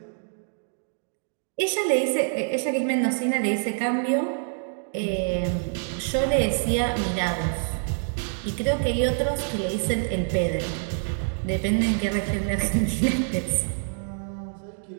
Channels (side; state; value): left; silent; digital silence